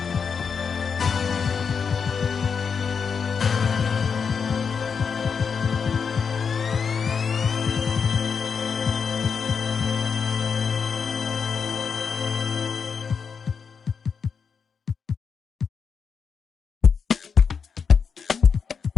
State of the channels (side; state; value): right; quieter; 6.1 dB